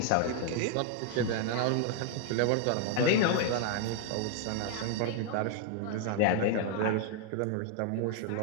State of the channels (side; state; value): both; different; correlation 0.00